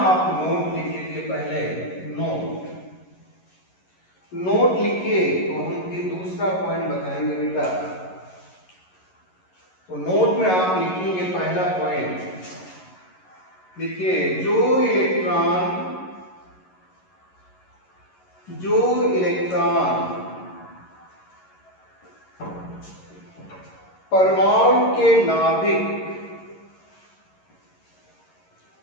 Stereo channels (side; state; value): right; late; 11 ms